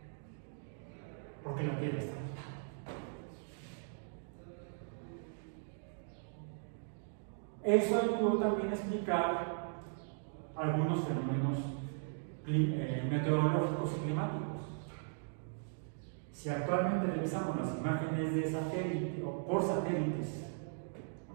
Porque la Tierra está aquí. Eso ayudó también a explicar algunos fenómenos meteorológicos y climáticos. Si actualmente revisamos las imágenes de satélite o por satélites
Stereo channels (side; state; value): left; silent; digital silence